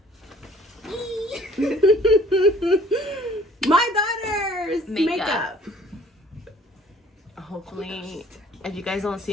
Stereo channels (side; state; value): both; normal; correlation 0.54